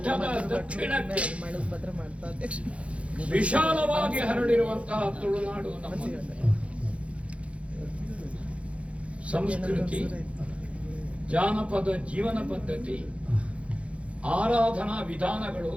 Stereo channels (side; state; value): left; late; 0.062 ms